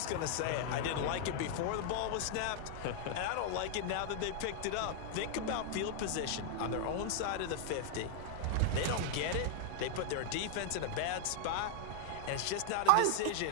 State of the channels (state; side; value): different; both; correlation 0.00